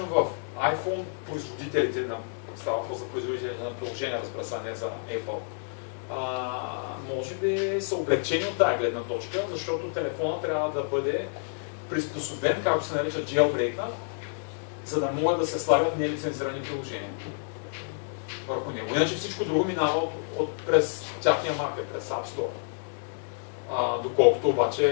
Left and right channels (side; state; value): right; silent; 59 dB below the other